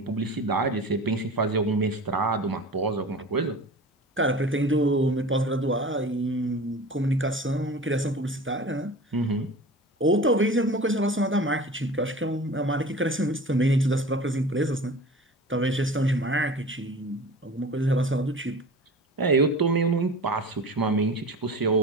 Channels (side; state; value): both; normal; correlation 0.37